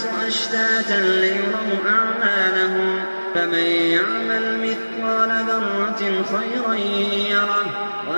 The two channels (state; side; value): inverted; both; correlation -1.00